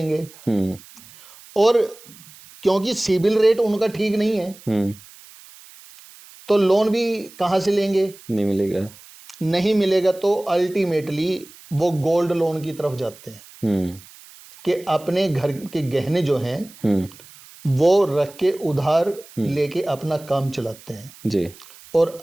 और क्योंकि सिबिल रेट उनका ठीक नहीं है तो लोन भी कहां से लेंगे, नहीं मिलेगा तो अल्टीमेटली वो गोल्ड लोन की तरफ जाते हैं कि अपने घर के गहने जो हैं वो रख के उधार लेके अपना काम चलाते हैं जी। और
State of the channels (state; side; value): noise; right; hiss, 22 dB below the sound